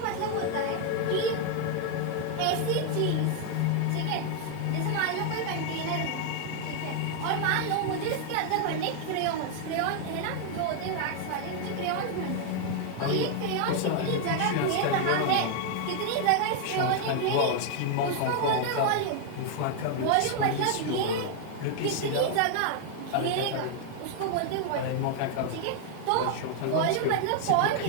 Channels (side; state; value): both; different; correlation 0.00